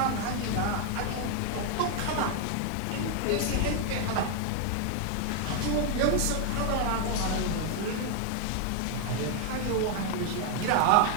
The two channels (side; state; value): both; different; correlation 0.00